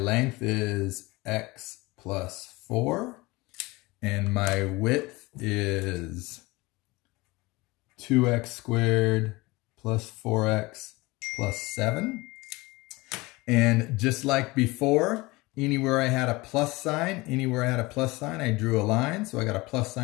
is x plus 4, and my width is 2x squared plus 4x plus 7. And just like before, anywhere I had a plus sign, I drew a line. So I got a plus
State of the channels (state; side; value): quieter; right; 22.6 dB